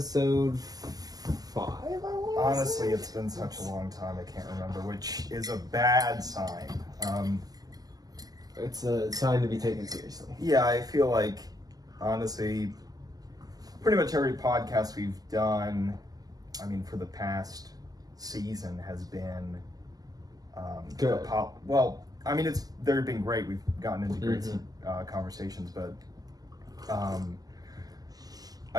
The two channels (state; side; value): late; left; 0.18 ms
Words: 5. Honestly, it's been such a long time, I can't remember, which is a bad sign. It's a sign to be taken seriously. Yeah, I feel like, honestly, pretty much every podcast we've done, I mean, for the past season has been good. Well, I mean, they've been great. We've gotten into great conversations, but